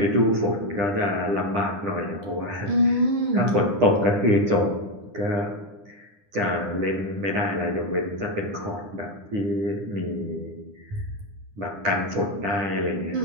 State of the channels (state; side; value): late; left; 10 ms